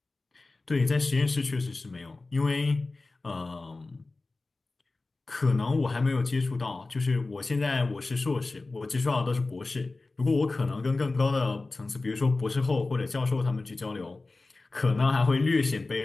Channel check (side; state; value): right; quieter; 3.4 dB